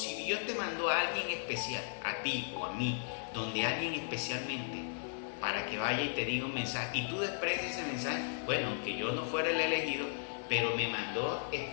Dios te mandó a alguien especial, a ti o a mí, donde alguien especialmente para que vaya y te diga un mensaje, y tú desprecias ese mensaje, bueno, aunque yo no fuera el elegido, pero me mandó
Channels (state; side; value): silent; right; digital silence